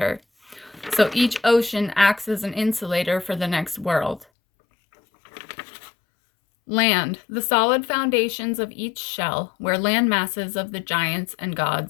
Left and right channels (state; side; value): drops out; right; at 4.2 s